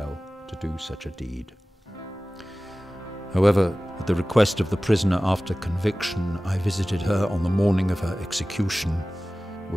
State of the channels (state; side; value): normal; both; correlation 0.97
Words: to do such a deed. However, at the request of the prisoner after conviction, I visited her on the morning of her execution,